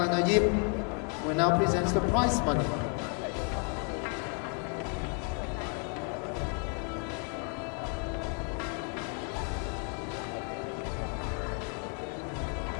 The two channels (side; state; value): right; quieter; 36.3 dB